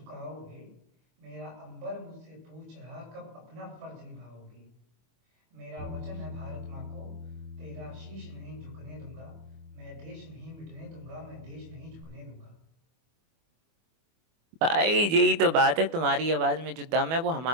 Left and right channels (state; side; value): late; left; 25 ms